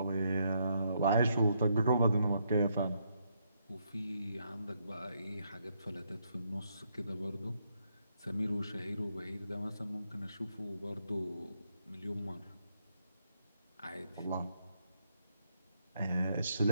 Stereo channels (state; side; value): inverted; both; correlation -0.76